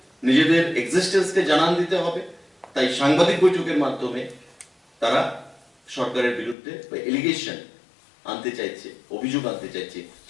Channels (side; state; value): right; drops out; at 6.6 s